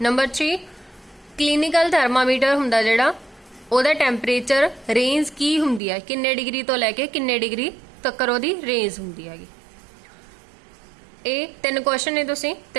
ਨੰਬਰ 3, ਕਲੀਨਿਕਲ ਥਰਮਾਮੀਟਰ ਹੁੰਦਾ ਜਿਹੜਾ, ਉਹਦਾ ਟੈਂਪਰੇਚਰ ਰੇਂਜ ਕੀ ਹੁੰਦੀ ਹੈ, ਕਿੰਨੇ ਡਿਗਰੀ ਤੋਂ ਲੈ ਕੇ ਕਿੰਨੇ ਡਿਗਰੀ ਤੱਕ ਉਹਦੀ ਰੇਂਜ ਹੁੰਦੀ ਹੈਗੀ। ਇਹ 3 ਕੁਐਸਚਨ ਨੇ, ਤੁਸੀਂ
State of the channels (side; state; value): left; drops out; at 5.8 s